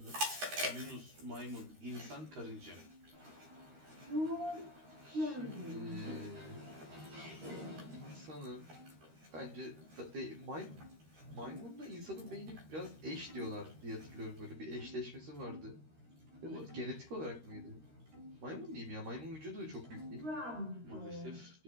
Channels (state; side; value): late; left; 13 ms